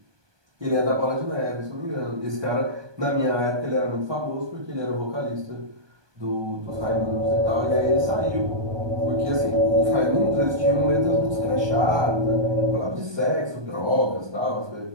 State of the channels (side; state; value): left; late; 1.2 ms